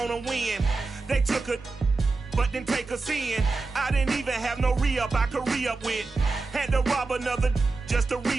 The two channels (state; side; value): quieter; left; 3.7 dB